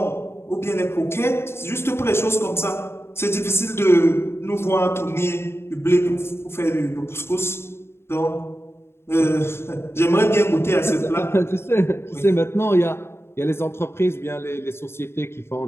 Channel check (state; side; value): late; right; 0.12 ms